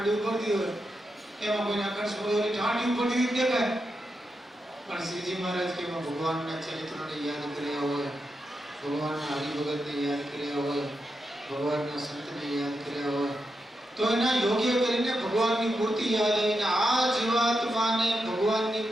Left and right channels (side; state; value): both; normal; correlation 0.86